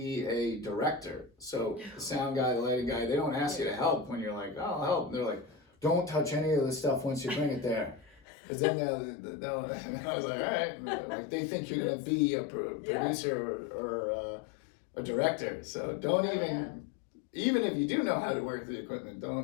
a director. So the sound guy, the lighting guy, they don't ask you to help when you're like, oh, I'll help. They're like, don't touch any of the stuff once you bring it there. Because then they'll and I was like, all right. Like, they think you're going to be a producer or a director. So don't even if you do know how to work the equipment,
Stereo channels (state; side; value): drops out; right; at 8.2 s